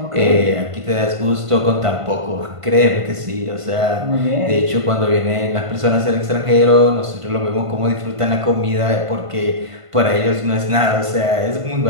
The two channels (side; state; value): left; late; 1.5 ms